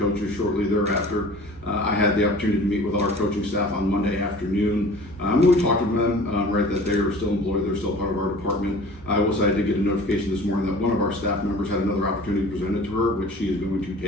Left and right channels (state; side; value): normal; both; correlation 0.44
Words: shortly thereafter. I had the opportunity to meet with our coaching staff on Monday afternoon. We talked to them, that they are still employed, they're still part of our department. I will say I did get a notification this morning that one of our staff members had another opportunity presented to her, which she is going to